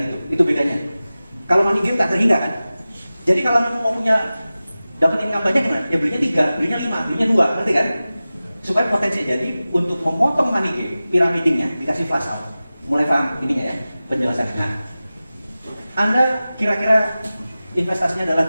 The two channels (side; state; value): both; inverted; correlation -0.96